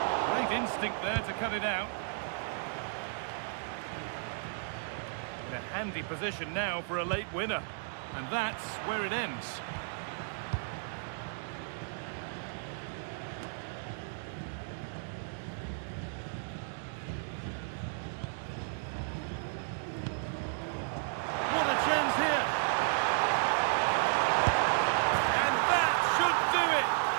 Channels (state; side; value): silent; left; digital silence